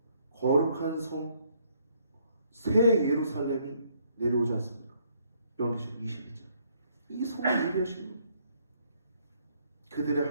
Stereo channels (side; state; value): both; inverted; correlation -0.68